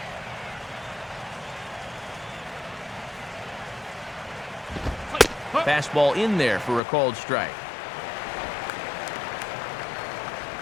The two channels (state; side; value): drops out; right; at 6.8 s